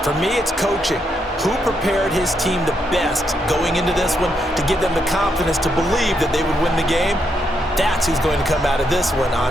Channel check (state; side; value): normal; both; correlation 0.79